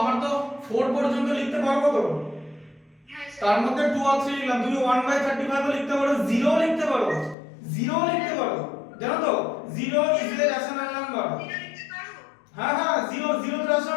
4 পর্যন্ত লিখতে পারবো তো, তার মধ্যে 2 আর 3 লিখলাম। তুমি 1/35 ও লিখতে পারো, 0 লিখতে পারো, 0 লিখতে পারো, জানো তো? 0 ইজ এ রেশনাল নাম্বার। হ্যাঁ হ্যাঁ 0 তো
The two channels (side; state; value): right; drops out; at 7.4 s